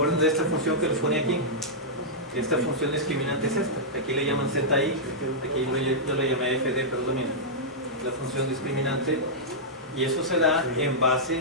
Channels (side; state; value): both; normal; correlation -0.10